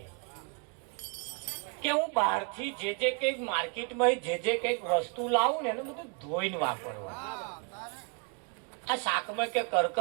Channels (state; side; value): quieter; left; 35.3 dB